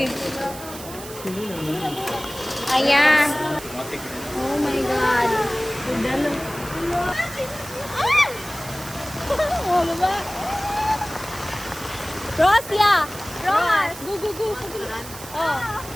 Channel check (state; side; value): noise; right; hiss, 14 dB below the sound